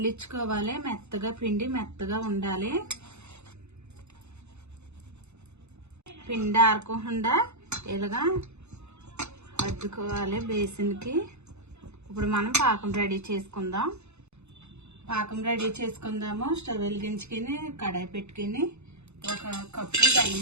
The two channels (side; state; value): left; late; 0.81 ms